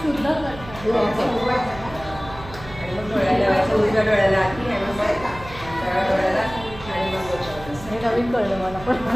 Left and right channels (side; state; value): right; noise; hum, 15 dB below the sound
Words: शुद्ध हे नवीन कळलं मला पण